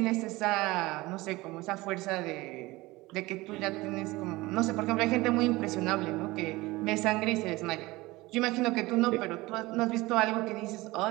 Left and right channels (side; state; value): left; quieter; 20.6 dB